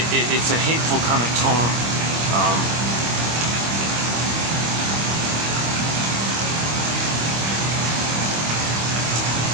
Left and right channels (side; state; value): left; late; 25 ms